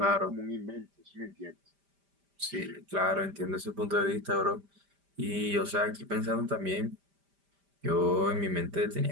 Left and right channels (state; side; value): late; left; 5.1 ms